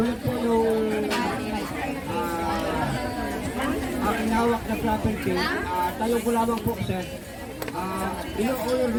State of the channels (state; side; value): identical; both; correlation 1.00